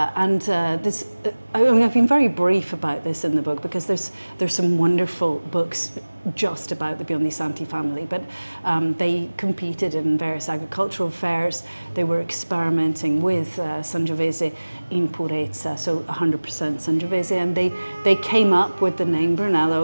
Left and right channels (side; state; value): both; inverted; correlation -1.00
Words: mean, I've been very brief about this in the book because there's some wonderful books just about the Biondi Santi family, but they competed in various agricultural fairs. they were experimenting with Sangiovese in purezza, so 100% Sangiovese, and they came up with the name